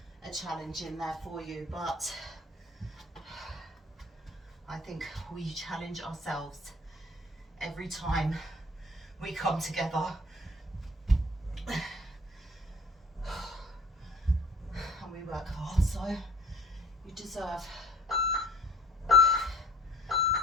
a challenge in there for you, but I think we challenge ourselves every time we come together. And we work hard, so you deserve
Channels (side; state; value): both; normal; correlation 0.52